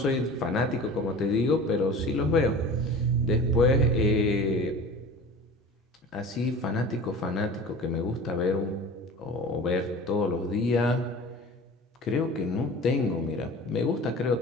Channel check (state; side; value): normal; both; correlation 0.38